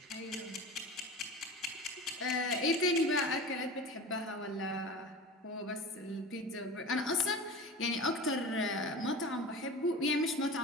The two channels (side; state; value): both; normal; correlation 0.33